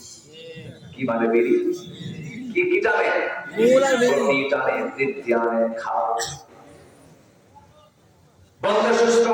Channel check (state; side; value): identical; both; correlation 1.00